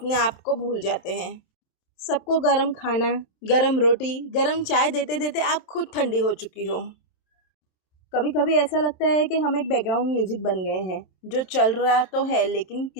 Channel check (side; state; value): right; late; 27 ms